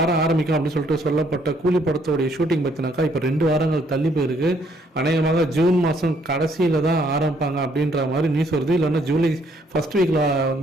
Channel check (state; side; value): normal; both; correlation 0.67